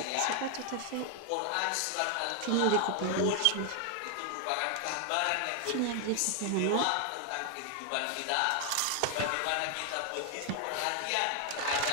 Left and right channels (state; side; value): different; both; correlation 0.00